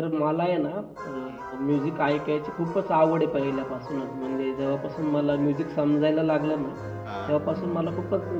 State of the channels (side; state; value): both; identical; correlation 1.00